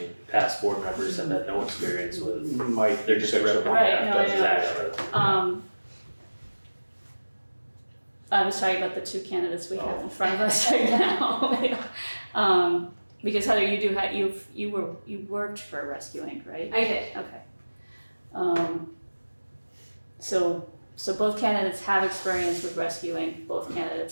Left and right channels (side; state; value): both; inverted; correlation -1.00